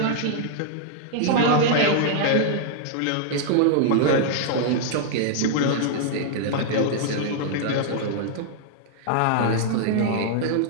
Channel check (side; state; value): both; different; correlation -0.01